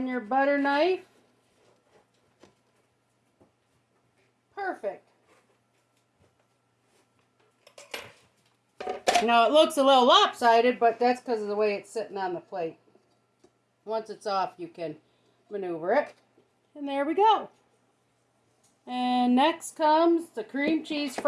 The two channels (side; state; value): both; identical; correlation 1.00